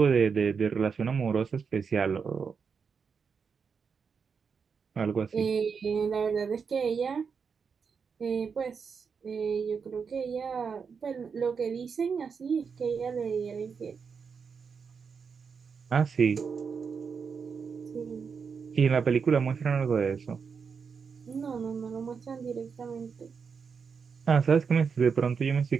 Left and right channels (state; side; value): quieter; left; 5.9 dB